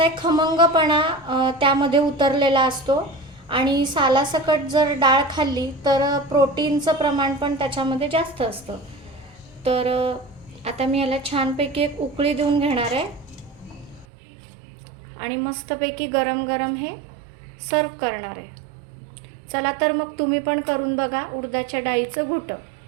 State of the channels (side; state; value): left; drops out; at 14.1 s